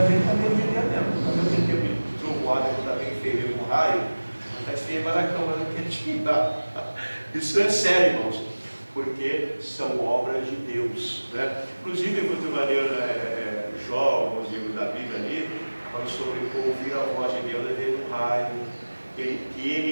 gente está meio de Deus mesmo. Às vezes tem medo de trovoada, que está bem feio com raio, não está feio para a cama, não quer tirar. Isso é sério, irmãos, porque são obras de Deus, né? Inclusive, muito maneiro, Jó, alguns livros da Bíblia ali, fala sobre ouvir a voz de Deus, ver um raio, que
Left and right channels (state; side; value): inverted; both; correlation -1.00